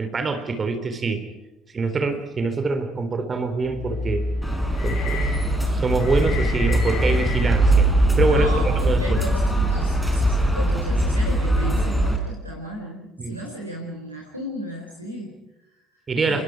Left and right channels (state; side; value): normal; both; correlation 0.74